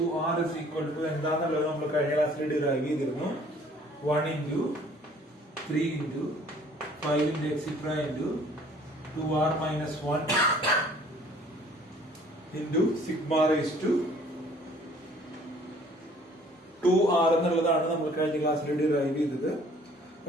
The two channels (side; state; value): both; normal; correlation 0.55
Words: is equal to എന്താണെന്നുള്ളത് നമ്മൾ കഴിഞ്ഞ ക്ലാസ്സിൽ derive ചെയ്തിരുന്നു. 1 into 3 into 5 into etc into 2r minus 1 into sigma raised to 2r എന്നുള്ളതാണ് നമ്മൾ കഴിഞ്ഞ ക്ലാസ്സിൽ ഡിറൈവ് ചെയ്തത്.